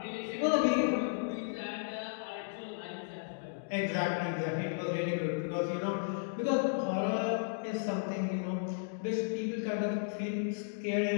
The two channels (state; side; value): silent; right; digital silence